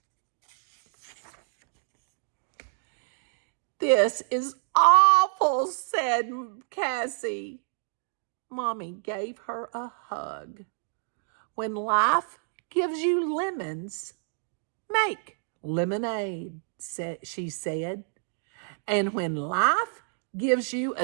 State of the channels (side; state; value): left; silent; digital silence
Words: "This is awful," said Cassie. Mommy gave her a hug. "When life gives you lemons, make lemonade," she said. "And when life gives you